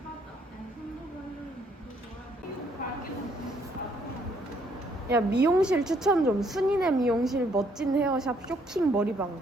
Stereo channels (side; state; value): both; normal; correlation 0.67